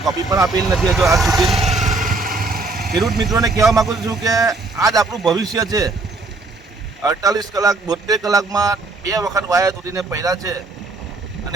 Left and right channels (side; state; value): left; quieter; 3.4 dB